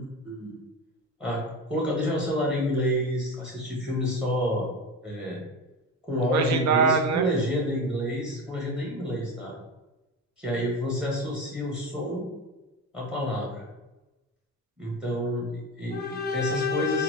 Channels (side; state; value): both; normal; correlation 0.24